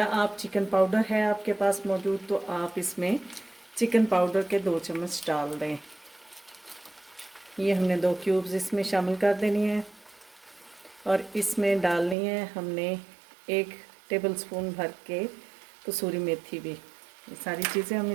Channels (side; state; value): left; drops out; at 12.2 s